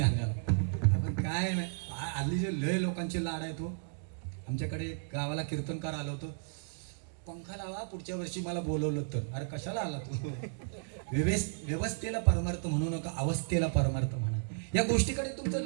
आपण काय नाही हल्ली जे लय लोकांचे लाड आहे तो. आमच्याकडे गावाला कीर्तनकार आलो होतो. पंखा लावा पुढच्या वर्षी मला बोलवलं तर. अरे कशाला आला तू. व्यवस्थेला परमार्थ म्हणू नका अवस्थेला परमार्थ म्हणा. या गोष्टीकडे तुमचं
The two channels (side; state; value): left; silent; digital silence